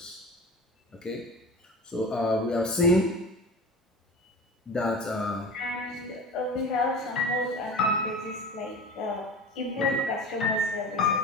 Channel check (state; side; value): normal; both; correlation 0.34